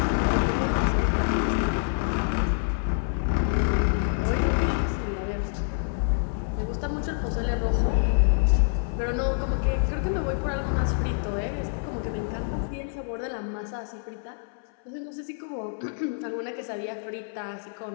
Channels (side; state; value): right; silent; 58 dB below the other